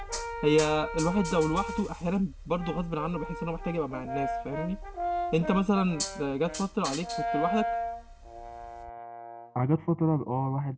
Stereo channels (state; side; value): identical; both; correlation 1.00